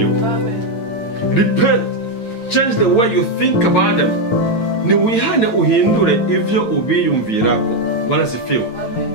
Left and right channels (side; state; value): right; late; 8.9 ms